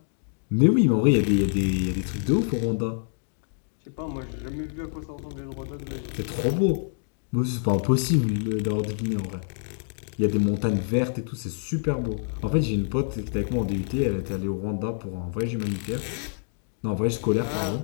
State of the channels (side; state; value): right; silent; digital silence